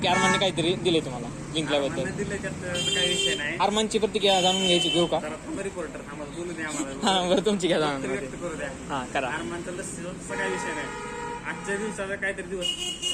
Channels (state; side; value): identical; both; correlation 1.00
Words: अरमानने काहीतरी दिले तुम्हाला जिंकल्याबद्दल. दिले त्यात काही विषय नाही. अरमानची प्रतिक्रिया जाणून घ्यायची घेऊ का? रिपोर्टर आम्हाला बोलू द्या, आम्हाला हा बरं, तुमची घ्या जाणून. व्यक्त करू द्या. हा करा. आरमानचा लस्सीचा काही विषय नाही. आजच्या दिवसाचा काहीतरी दिवस